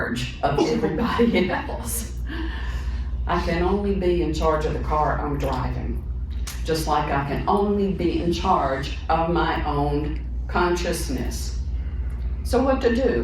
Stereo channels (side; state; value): both; identical; correlation 1.00